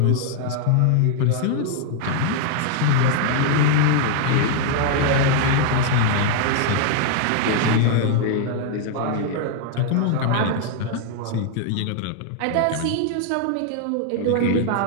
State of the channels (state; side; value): different; both; correlation 0.00